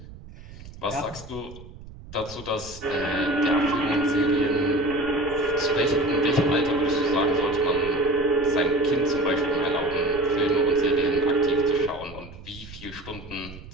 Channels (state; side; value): noise; right; rumble, 16 dB below the sound